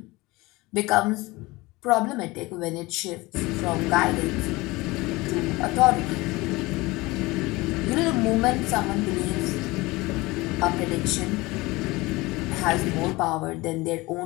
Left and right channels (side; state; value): right; quieter; 21.8 dB